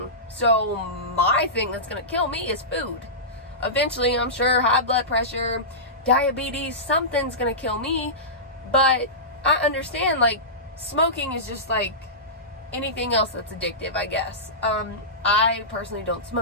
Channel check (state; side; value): normal; both; correlation -0.18